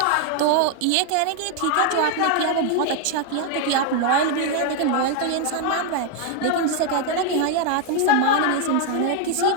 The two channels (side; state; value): both; different; correlation 0.00